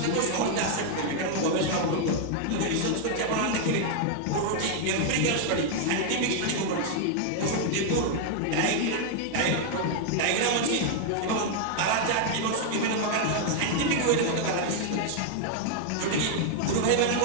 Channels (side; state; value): both; different; correlation 0.00